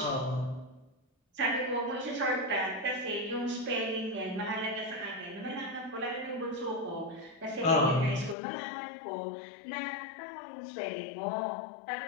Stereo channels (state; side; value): drops out; right; at 8.3 s